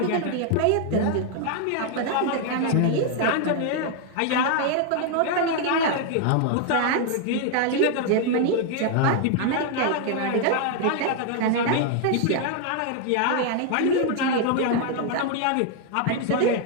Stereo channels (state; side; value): different; both; correlation 0.00